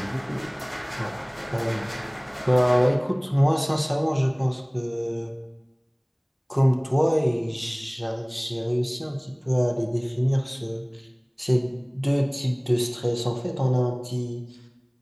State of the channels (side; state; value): both; identical; correlation 1.00